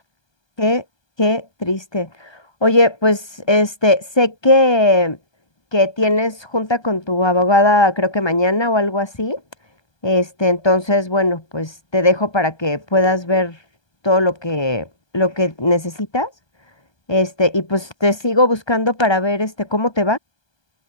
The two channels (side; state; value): right; late; 1.2 ms